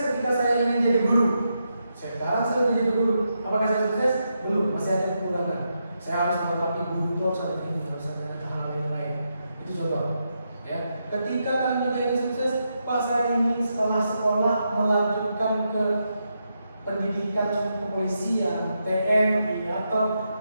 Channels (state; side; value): inverted; both; correlation -0.84